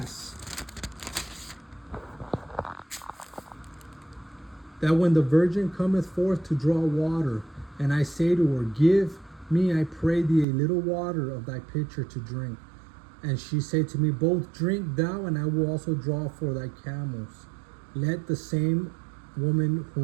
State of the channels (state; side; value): drops out; left; at 10.5 s